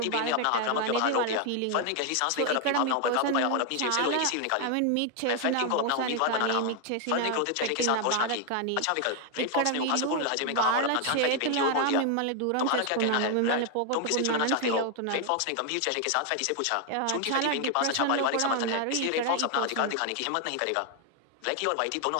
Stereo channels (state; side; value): different; both; correlation 0.00